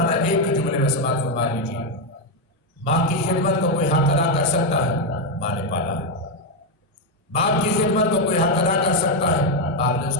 ایک ہی جملے میں سماعت فرما لیجیے، ماں کی خدمت کو کوئی حق ادا کر سکتا ہے؟ ماں نے پالا ہے۔ باپ کی خدمت کو کوئی حق ادا کر سکتا ہے؟ باپ نے اس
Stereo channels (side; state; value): both; normal; correlation 0.04